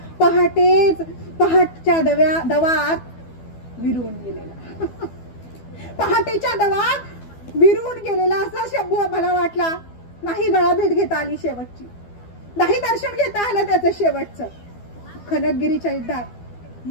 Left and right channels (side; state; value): right; late; 12 ms